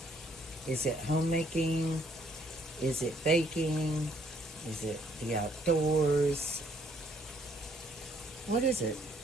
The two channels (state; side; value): normal; both; correlation 0.66